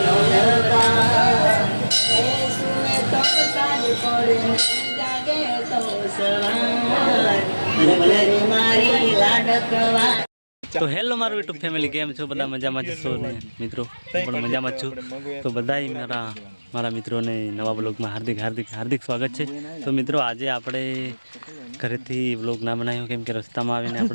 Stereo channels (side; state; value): both; inverted; correlation -1.00